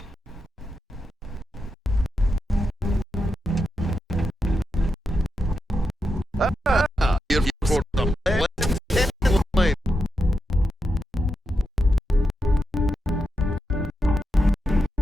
You're for the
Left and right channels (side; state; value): both; normal; correlation 0.86